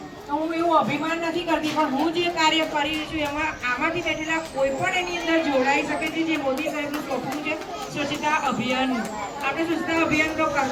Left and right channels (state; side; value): identical; both; correlation 1.00